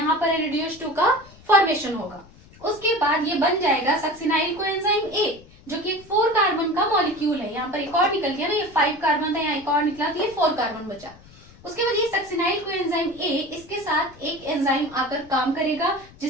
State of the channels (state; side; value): noise; left; rumble, 23 dB below the sound